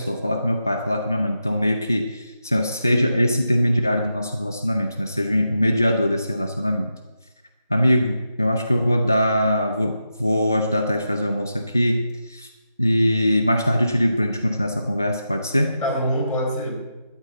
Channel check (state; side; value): inverted; both; correlation -0.87